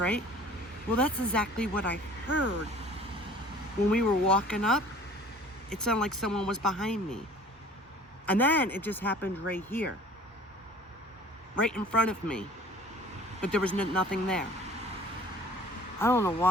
Well, that's exactly what I heard. When we were walking up, it sounded like someone was behind me. And then it just happened right here. Right in front of me. But there was nothing there. I don't know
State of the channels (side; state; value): both; normal; correlation 0.49